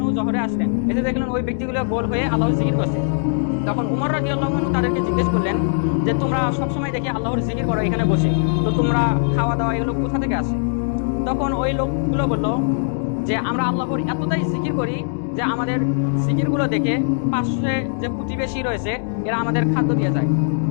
জোহরে আসলেন, এসে দেখলেন ওই ব্যক্তিগুলো গোল হয়ে আল্লাহর জিকির করছে। তখন উমর রাদিয়াল্লাহু আনহু তাদেরকে জিজ্ঞেস করলেন যে তোমরা সবসময় দেখি আল্লাহর জিকির করো এখানে বসে, তো তোমরা খাওয়া দাওয়া এগুলো কোথা থেকে আসে? তখন ওই লোকগুলো বলল যে আমরা আল্লাহর এতটাই জিকির করি যে আমাদের জিকিরগুলো দেখে পাশে যে প্রতিবেশী রয়েছে এরা আমাদের খাদ্য দিয়ে যায়।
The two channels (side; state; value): right; silent; digital silence